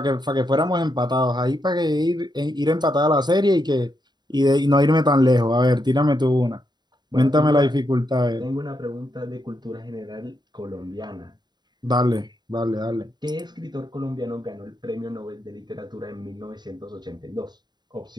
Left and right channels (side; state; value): left; late; 0.21 ms